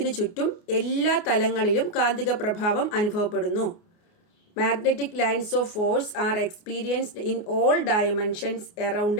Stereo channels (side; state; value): right; late; 28 ms